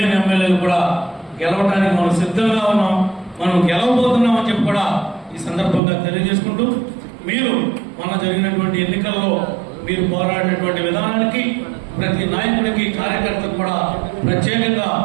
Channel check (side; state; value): left; drops out; at 5.8 s